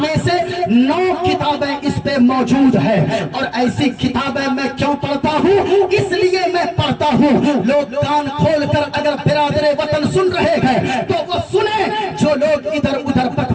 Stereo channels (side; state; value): both; identical; correlation 1.00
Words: میں سے 9 کتابیں اس پہ موجود ہے۔ اور ایسی کتابیں میں کیوں پڑھتا ہوں؟ اس لیے میں پڑھتا ہوں لوگ کان کھول کر اگر برادر وطن سن رہے ہیں تو وہ سنیں، جو لوگ ادھر ادھر